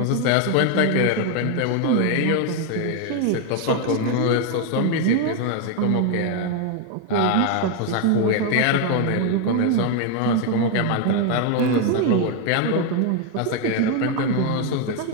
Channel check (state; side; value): different; both; correlation 0.01